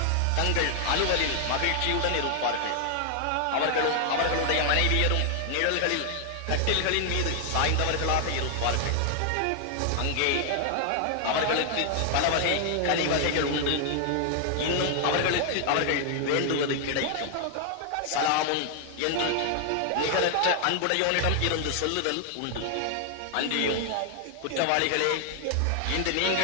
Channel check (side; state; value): both; different; correlation 0.00